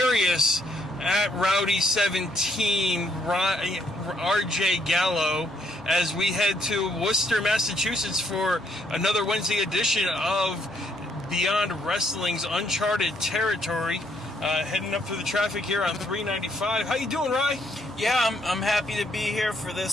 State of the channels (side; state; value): right; noise; hum, 26 dB below the sound